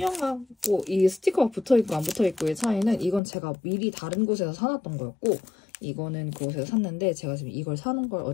이 스티커가 붙어있고 안 붙어있고의 차이는 이건 제가 미리 다른 곳에서 사놨던 거였고 이거는 그곳에서 샀는데 제가 지금 이걸 사는 걸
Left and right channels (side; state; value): right; drops out; at 3.2 s